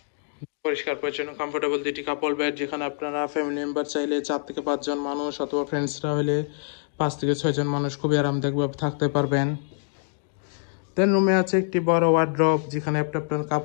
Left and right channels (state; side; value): silent; right; digital silence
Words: পরিষ্কার পরিচ্ছন্ন কমফোর্টেবল দুইটি কাপল বেড, যেখানে আপনারা ফ্যামিলি মেম্বার চাইলে 4 থেকে 5 জন মানুষ অথবা ফ্রেন্ডসরা হলে 5 থেকে 6 জন মানুষ খুবই আরামদায়কভাবে থাকতে পারবেন। দেন রুমে আছে একটি বড় ওয়ার্ড্রপ, যেখানে আপনি আপনার